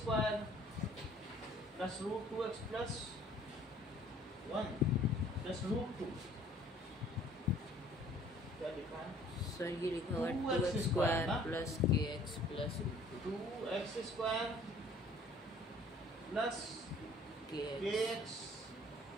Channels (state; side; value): normal; both; correlation 0.55